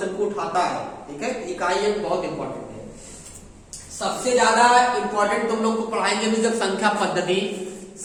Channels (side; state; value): both; identical; correlation 1.00